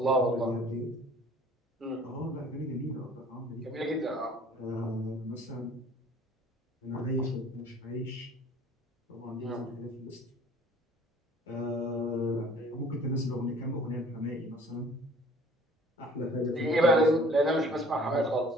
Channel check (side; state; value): both; normal; correlation 0.51